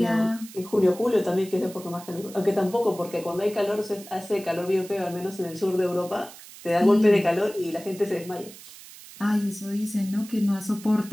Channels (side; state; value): right; noise; hiss, 18 dB below the sound